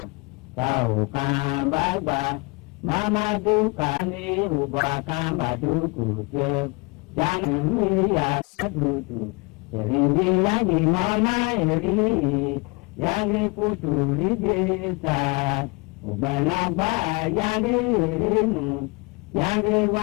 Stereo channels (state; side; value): quieter; right; 28.1 dB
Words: cả bác bà mama tu cả đi qua cam bà tu cụ chơi cha nương mi ya sát tu tu đi lá gì ngon nay đi ya đi cô tu đi chơi sa bà lao ba ya đi ya đi